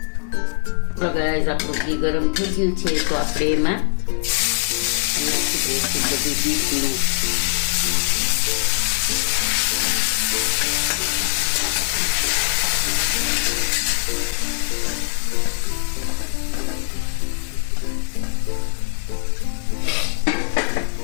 તો ગાઈસ, આપણું ઘી ગરમ થઈ ગયું છે તો આપણે એમાં નાખી દઈશું બધું બીટનું.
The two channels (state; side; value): silent; right; digital silence